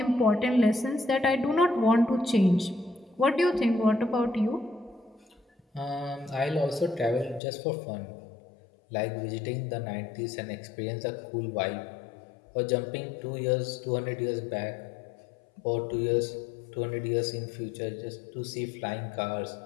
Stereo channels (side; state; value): right; drops out; at 7.4 s